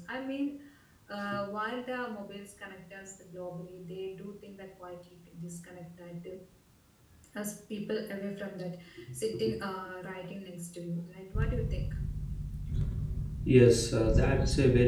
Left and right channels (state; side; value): identical; both; correlation 1.00